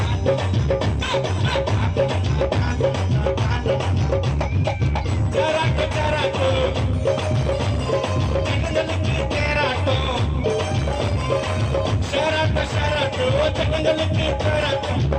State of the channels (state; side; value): identical; both; correlation 1.00